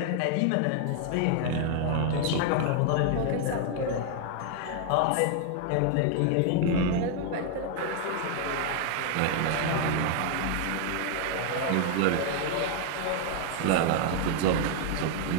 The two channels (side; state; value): both; different; correlation 0.00